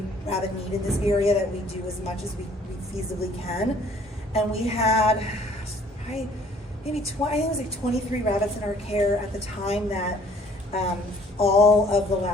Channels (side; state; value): both; normal; correlation 0.57